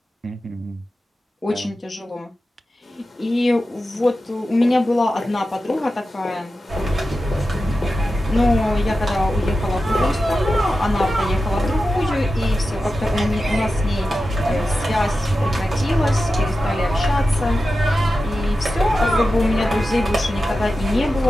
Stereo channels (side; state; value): both; normal; correlation 0.92